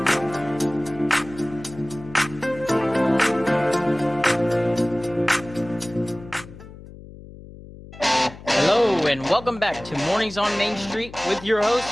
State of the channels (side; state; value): left; noise; hum, 17 dB below the sound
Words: And welcome back to Mornings on Main Street with your host,